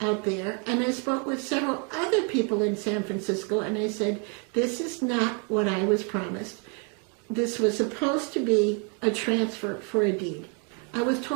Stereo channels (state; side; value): quieter; left; 37.7 dB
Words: out there, and I spoke with several other people in San Francisco, and I said, this is not what I was promised. This was supposed to be a transfer for a deed. I was